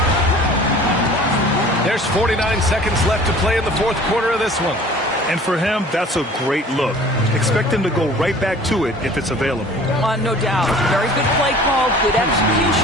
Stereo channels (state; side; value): normal; both; correlation 0.47